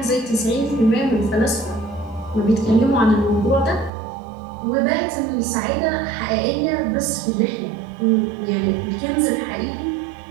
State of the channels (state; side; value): drops out; left; at 3.9 s